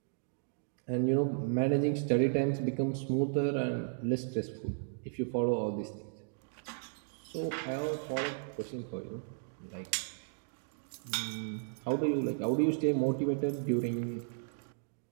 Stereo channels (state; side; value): silent; left; digital silence